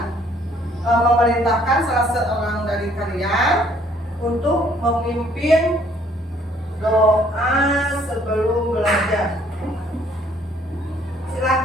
memerintahkan salah seorang dari kalian untuk memimpin doa sebelum belajar.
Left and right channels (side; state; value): both; normal; correlation 0.62